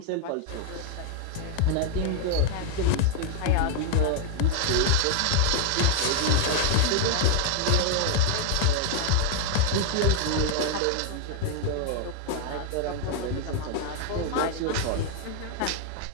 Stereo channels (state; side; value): different; both; correlation 0.00